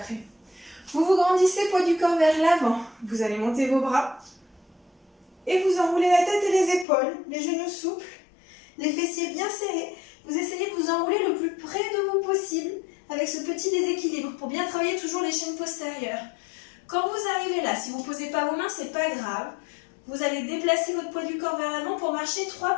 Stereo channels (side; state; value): right; drops out; at 6.9 s